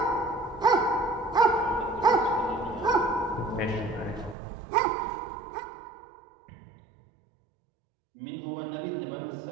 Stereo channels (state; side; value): drops out; left; at 4.4 s